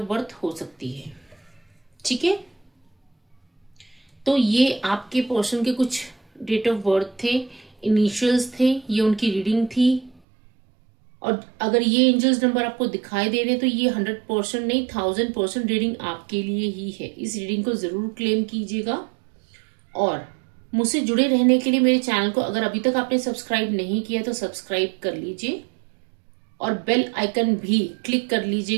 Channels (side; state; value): left; drops out; at 10.2 s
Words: बर्थ हो सकती है। ठीक है, तो ये आपके पर्सन के कुछ डेट ऑफ बर्थ थे, इनिशियल्स थे, ये उनकी रीडिंग थी। और अगर ये एंजल्स नंबर आपको दिखाई दे रहे हैं तो ये 100% नहीं, 1000% रीडिंग आपके लिए ही है। इस रीडिंग को जरूर क्लेम कीजिएगा। और मुझसे जुड़े रहने के लिए मेरे चैनल को अगर अभी तक आपने सब्सक्राइब नहीं किया तो सब्सक्राइब कर लीजिए और बेल आइकन भी क्लिक कर